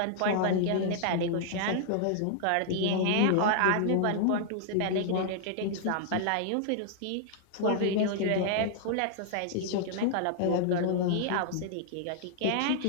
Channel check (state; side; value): different; both; correlation -0.01